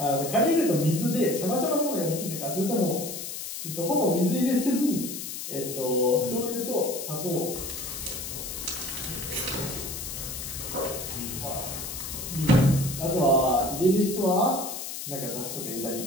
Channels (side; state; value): left; noise; hiss, 7 dB below the sound